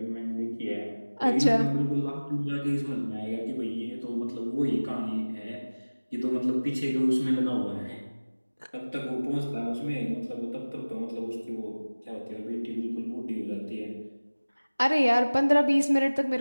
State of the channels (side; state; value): both; inverted; correlation -1.00